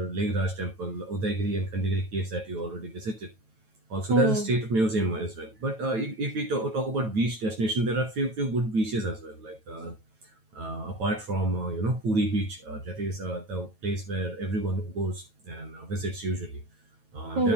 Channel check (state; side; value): late; left; 9.2 ms